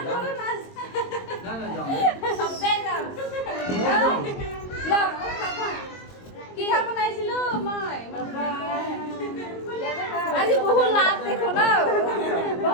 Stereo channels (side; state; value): right; late; 22 ms